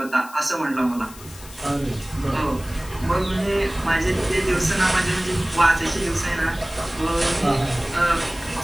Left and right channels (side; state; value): left; noise; hiss, 18 dB below the sound